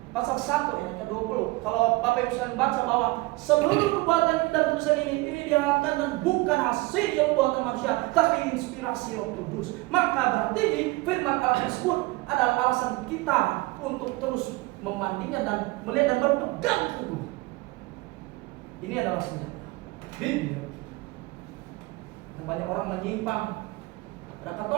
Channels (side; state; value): left; quieter; 22.2 dB